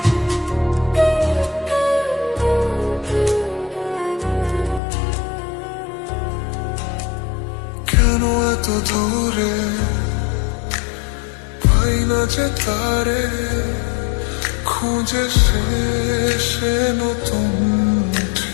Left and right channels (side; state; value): right; drops out; at 4.8 s